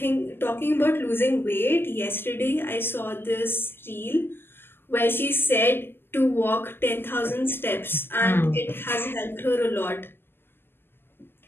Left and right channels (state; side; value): late; right; 0.11 ms